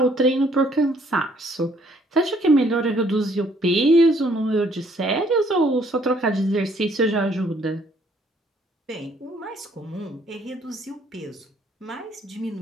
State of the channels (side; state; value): both; normal; correlation 0.64